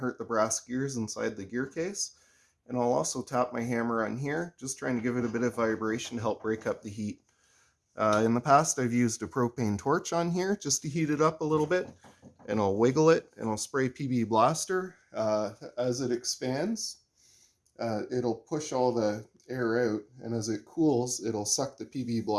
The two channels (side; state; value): both; identical; correlation 1.00